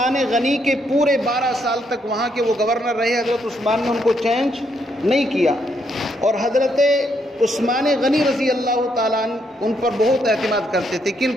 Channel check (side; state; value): both; normal; correlation 0.75